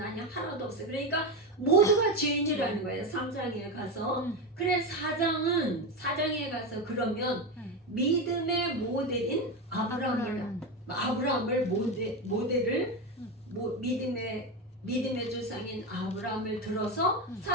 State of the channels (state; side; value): normal; both; correlation 0.15